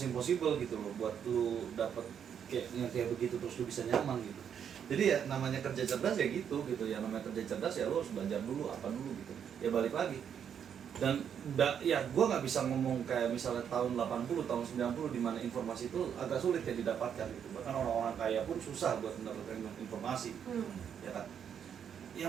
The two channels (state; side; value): quieter; left; 8.2 dB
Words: impossible gitu loh buat lu dapet kayak begitu terus lu bisa nyaman gitu. Jadi ya namanya kerja cerdas ya gitu ya, namanya kerja cerdas ya lu harus belajar dulu apa dulu gitu ya, balik lagi. Dan ya gue nggak bisa ngomong kayak misalnya tahun 80 tahun 90 di mana informasi itu agak sulit ya didapatkan gitu, bahkan orang-orang kaya pun susah buat mendapatkan informasi ya kan. Ya